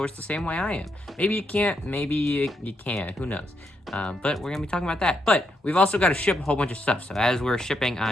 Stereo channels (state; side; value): normal; both; correlation 0.80